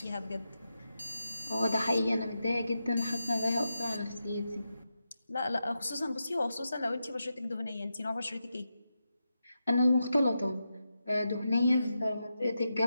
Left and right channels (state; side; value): inverted; both; correlation -0.88